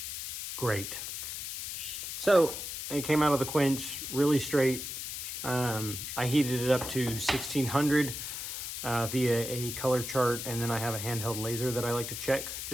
Great. So it came out of the quench really straight. I heated it up to 1600 via a color chart, and then I have a handheld laser that I like to check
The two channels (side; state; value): left; noise; hiss, 6 dB below the sound